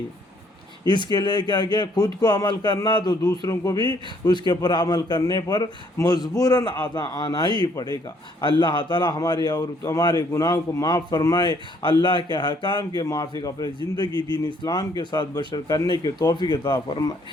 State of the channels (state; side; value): normal; both; correlation 0.65